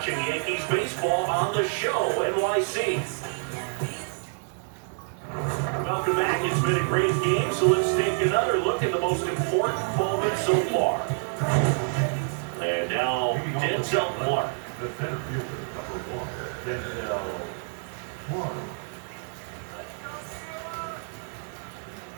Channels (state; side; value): silent; left; 56 dB below the other